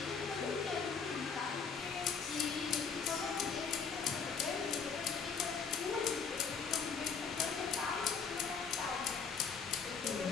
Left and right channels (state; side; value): quieter; right; 5.9 dB